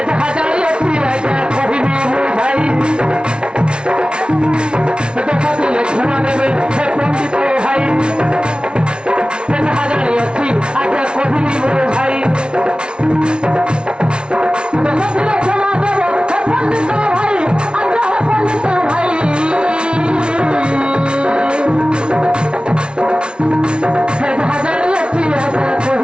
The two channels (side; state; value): left; late; 0.056 ms